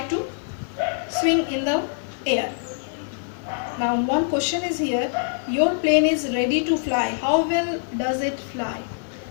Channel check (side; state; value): right; silent; digital silence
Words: to swing in the air. Now one question is here, your plane is ready to fly. How well does it fly?